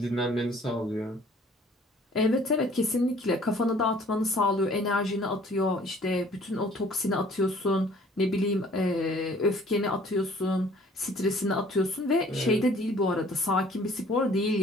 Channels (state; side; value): normal; both; correlation 0.54